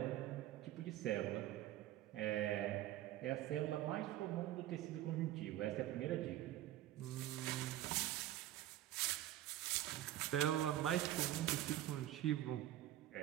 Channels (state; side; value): quieter; left; 13.6 dB